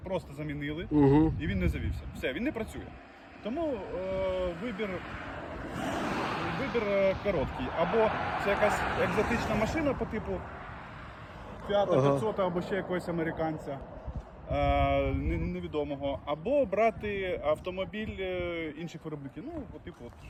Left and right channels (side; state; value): both; identical; correlation 1.00